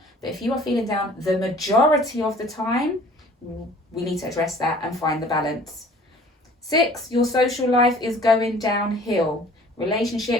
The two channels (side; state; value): both; normal; correlation 0.50